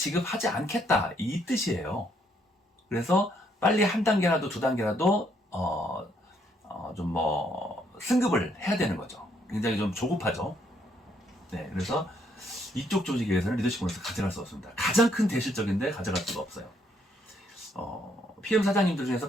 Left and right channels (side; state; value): both; normal; correlation 0.71